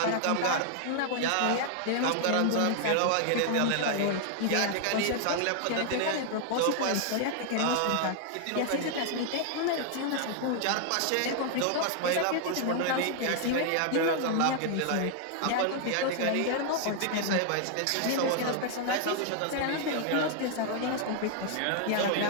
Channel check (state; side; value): different; both; correlation 0.00